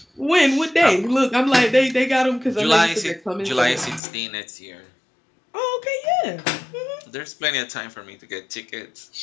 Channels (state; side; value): drops out; right; at 4.0 s